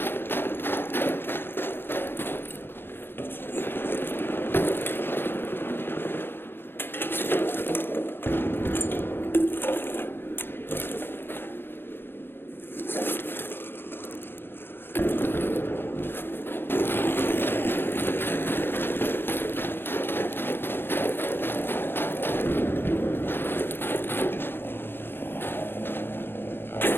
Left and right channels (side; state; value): right; late; 0.10 ms